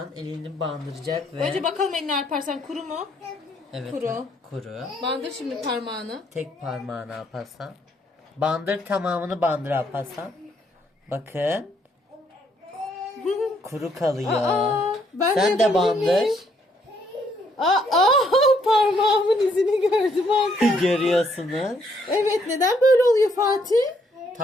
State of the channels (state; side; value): normal; both; correlation 0.70